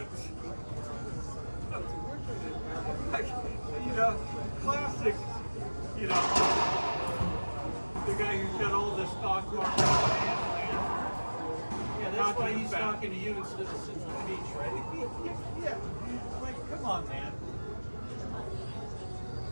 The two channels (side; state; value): both; inverted; correlation -1.00